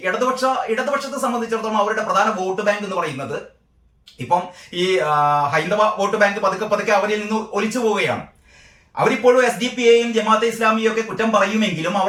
ഇടതുപക്ഷത്തെ സംബന്ധിച്ചിടത്തോളം അവരുടെ പ്രധാന വോട്ട് ബാങ്ക് എന്ന് പറയുന്നത് ഇപ്പം ഈ ഹൈന്ദവ വോട്ട് ബാങ്ക് പതുക്കെ അവരിൽ നിന്ന് ഒലിച്ചു പോവുകയാണ്. അവരിപ്പോഴും SDP-യെയും ജമാഅത്തെ ഇസ്ലാമിയെയും ഒക്കെ കുറ്റം പറയുമെങ്കിലും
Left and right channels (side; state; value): both; identical; correlation 1.00